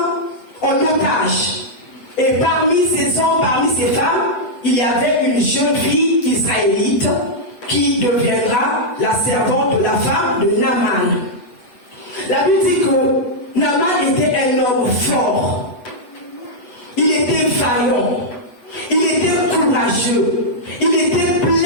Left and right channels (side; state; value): right; late; 8.0 ms